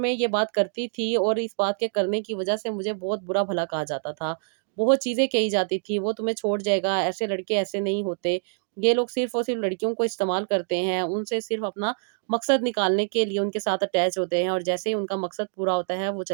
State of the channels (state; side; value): silent; left; digital silence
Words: ये बात करती थी, और इस बात के करने की वजह से मुझे बहुत बुरा-भला कहा जाता था। बहुत चीज़ें कही जाती थी, वो तुम्हें छोड़ जाएगा, ऐसे लड़के ऐसे नहीं होते। ये लोग सिर्फ़ और सिर्फ़ लड़कियों को इस्तेमाल करते हैं, उनसे सिर्फ़ अपना मकसद निकालने के लिए उनके साथ अटैच होते हैं, और जैसे ही उनका मकसद पूरा होता है, वो